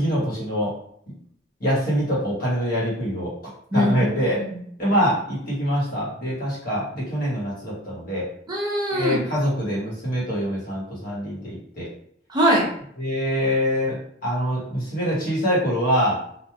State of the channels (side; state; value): both; normal; correlation 0.33